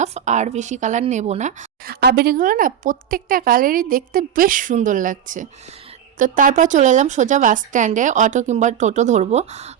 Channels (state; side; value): quieter; left; 9.3 dB